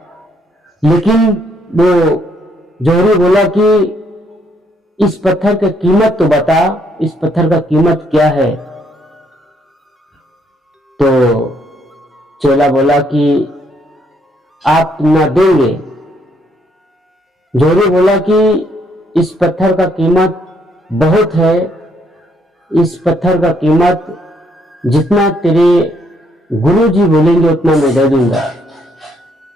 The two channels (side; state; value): both; normal; correlation 0.71